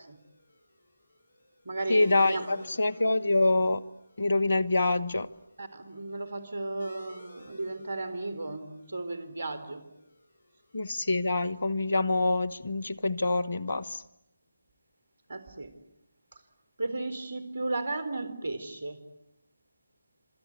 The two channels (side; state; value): both; inverted; correlation -0.93